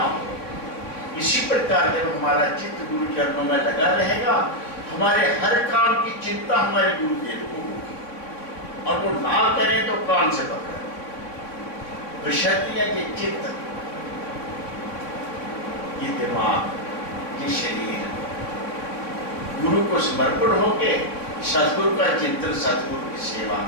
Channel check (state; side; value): late; right; 3.5 ms